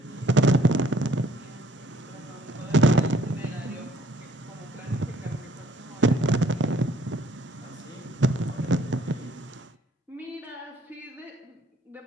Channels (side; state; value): both; normal; correlation 0.60